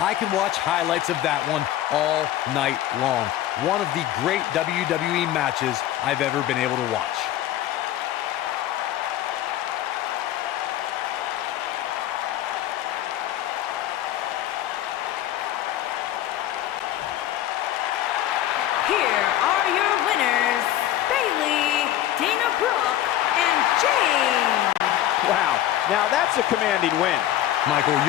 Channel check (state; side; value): quieter; right; 12.9 dB